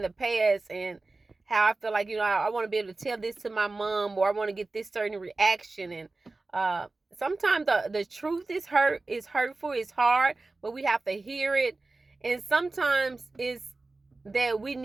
the past, and how I feel like, I want to be able to tell this to my mom, or I want to get this certain reaction. And sometimes the truth is hurtful, it's hard, but we have to hear it. And sometimes it's that we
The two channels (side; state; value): left; quieter; 3.4 dB